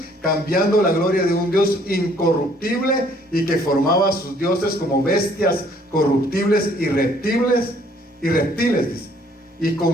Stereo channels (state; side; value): normal; both; correlation 0.62